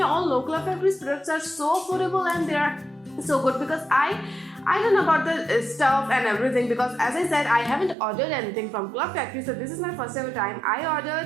all know Club Factory's products are so affordable and they are so good, because I don't know about the stuff and everything, because as I said, I haven't ordered anything from Club Factory. So this is my first ever time I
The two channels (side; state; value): left; drops out; at 8.0 s